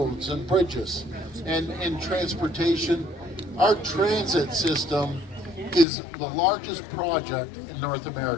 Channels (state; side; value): drops out; right; at 5.9 s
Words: and bridges and transportation, our transit system is the largest project in North